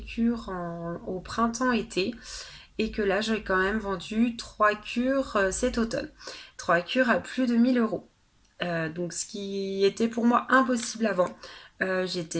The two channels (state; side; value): identical; both; correlation 1.00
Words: cures au printemps-été et que là, j'ai quand même vendu 3 cures cet automne. 3 cures à plus de 1 000 euros. Donc, ce qui était pour moi impossible avant.